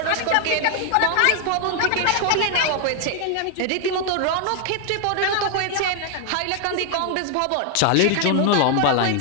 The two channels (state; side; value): different; both; correlation 0.00